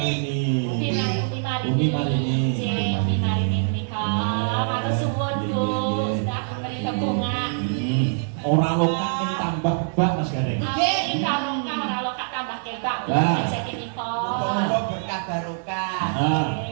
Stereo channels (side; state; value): left; silent; 57 dB below the other